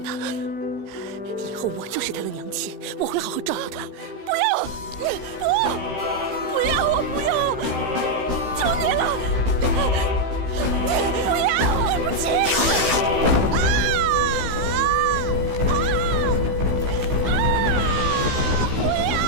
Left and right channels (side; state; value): left; late; 16 ms